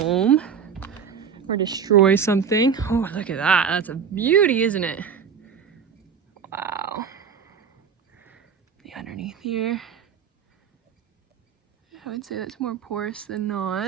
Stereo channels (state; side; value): quieter; left; 6.9 dB